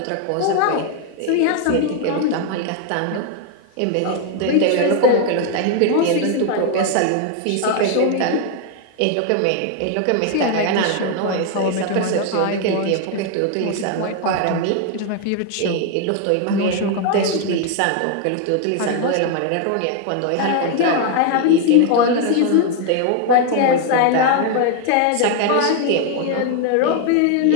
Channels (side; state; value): both; different; correlation 0.00